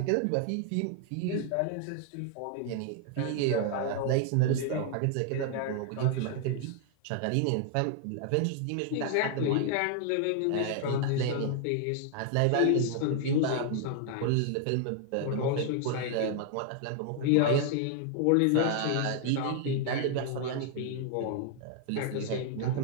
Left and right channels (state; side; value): different; both; correlation 0.00